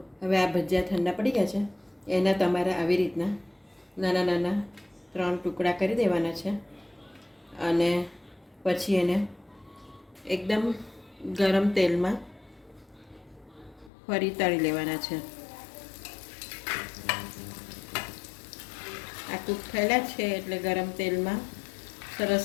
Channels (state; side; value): drops out; right; at 13.9 s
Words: હવે આ ભજીયા ઠંડા પડી ગયા છે. એના તમારે આવી રીતના નાના નાના 3 ટુકડા કરી દેવાના છે. અને પછી એને એકદમ ગરમ તેલમાં ફરી તળી લેવાના છે. આ કૂક થયેલા છે એટલે ગરમ તેલમાં